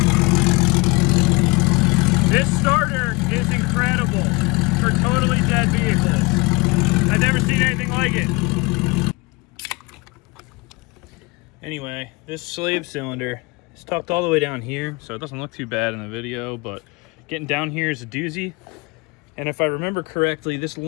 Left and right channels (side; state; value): right; quieter; 26.5 dB